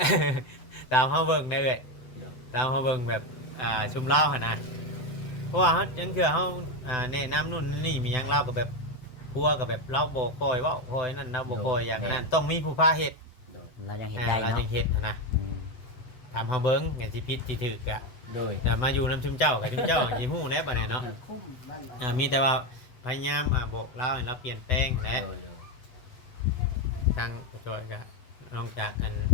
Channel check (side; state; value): right; late; 7.9 ms